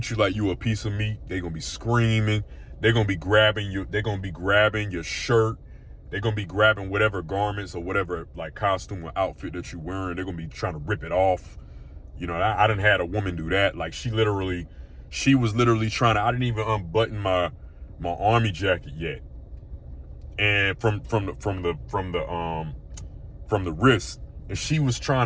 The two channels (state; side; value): identical; both; correlation 1.00